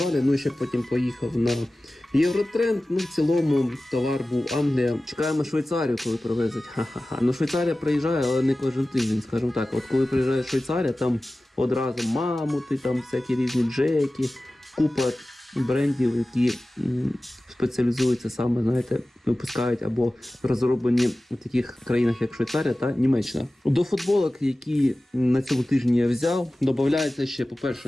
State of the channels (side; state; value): both; normal; correlation 0.96